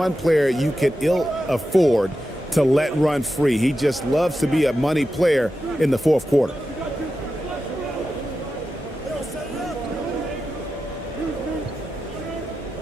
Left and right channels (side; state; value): both; normal; correlation 0.91